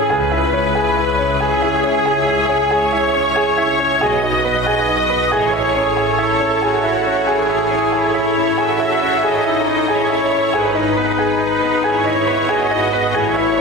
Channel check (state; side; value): normal; both; correlation 0.42